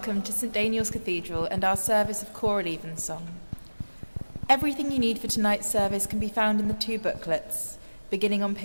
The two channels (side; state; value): both; inverted; correlation -1.00